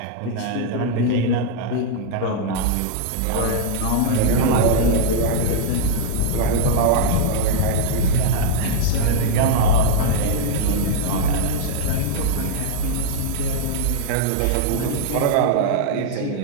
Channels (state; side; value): different; both; correlation 0.00